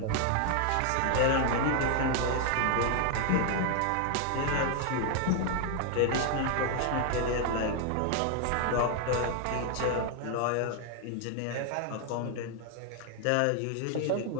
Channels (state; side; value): different; both; correlation 0.00